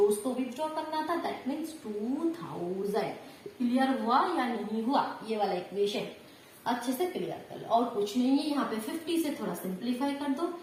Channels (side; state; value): both; identical; correlation 1.00